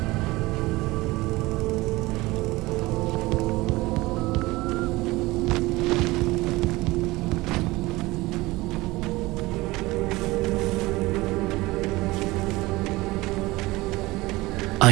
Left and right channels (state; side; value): quieter; left; 20.5 dB